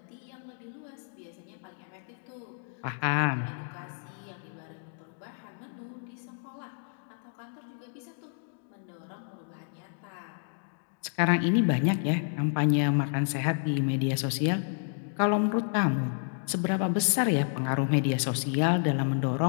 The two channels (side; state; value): right; silent; digital silence